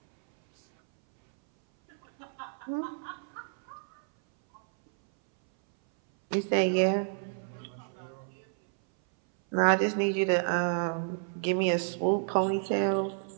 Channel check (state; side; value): silent; left; 58 dB below the other